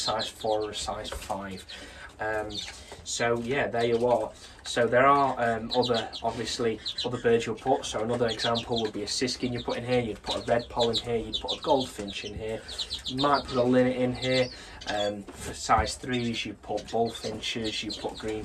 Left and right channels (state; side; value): identical; both; correlation 1.00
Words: 4 or a size 5. So yeah, there you are. So there are other birds you'll put. So another example would be a Siskin you put in here. You'd put a Redpole in here. You'd put a goldfinch in here. You might put a linnet in here. For size 3s, you put bullfinches. You put